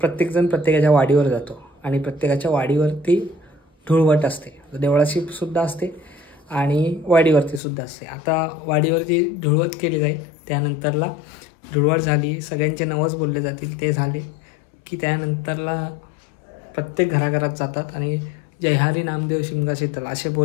प्रत्येकाच्या वाडीवर जातो आणि प्रत्येकाच्या वाडीवरती धुळवट असते, देवळाची सुद्धा असते आणि वाडीवरती सुद्धा असते. आता वाडीवरती धुळवट केली जाईल, त्यानंतरला धुळवट झाली, सगळ्यांचे नवस बोलले जातील, ते झाले की त्यानंतरला प्रत्येक घराघरात जातात आणि जय हरी नामदेव शिमगा शीतल असे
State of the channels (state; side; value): drops out; right; at 7.6 s